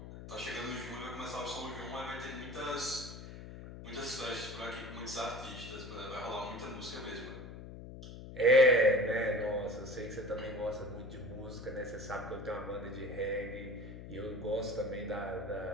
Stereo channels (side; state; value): left; noise; hum, 12 dB below the sound